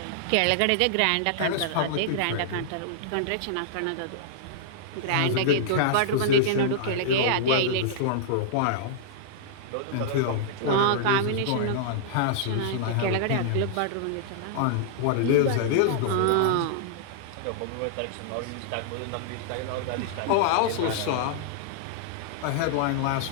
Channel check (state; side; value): different; both; correlation -0.02